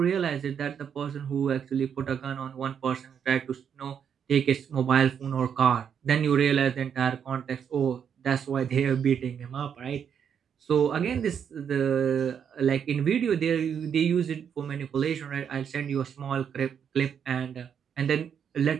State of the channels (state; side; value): quieter; left; 7.8 dB